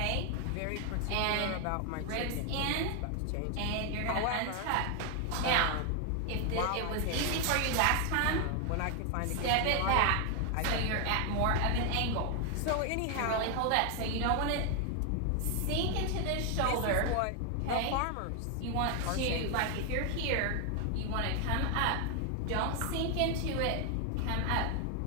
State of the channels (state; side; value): different; both; correlation 0.00